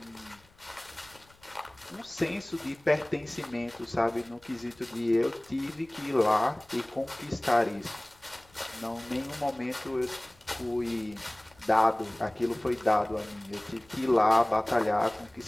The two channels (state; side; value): noise; left; rumble, 29 dB below the sound